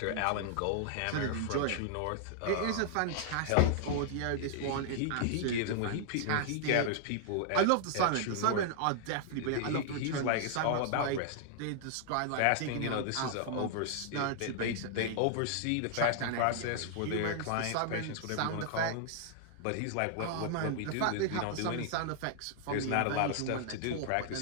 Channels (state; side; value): different; both; correlation -0.01